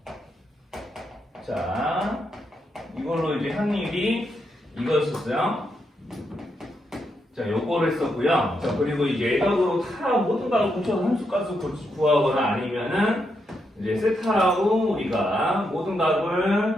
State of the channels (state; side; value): normal; both; correlation 0.81